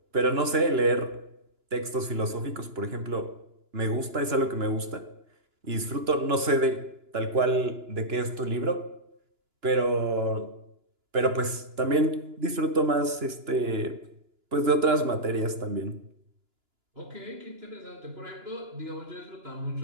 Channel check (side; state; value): left; late; 2.9 ms